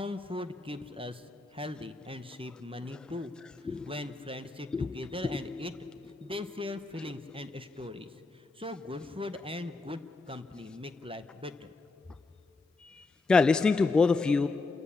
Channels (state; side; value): quieter; right; 3.8 dB